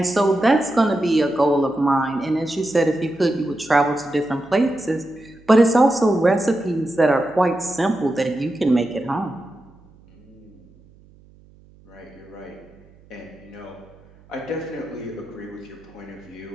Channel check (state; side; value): noise; right; hum, 27 dB below the sound